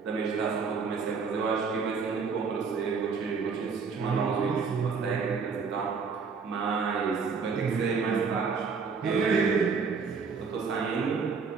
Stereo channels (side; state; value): left; quieter; 5.2 dB